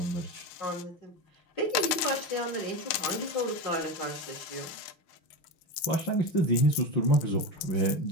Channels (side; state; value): right; late; 6.5 ms